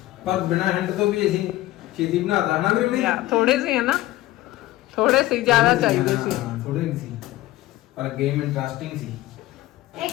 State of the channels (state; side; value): quieter; right; 16.5 dB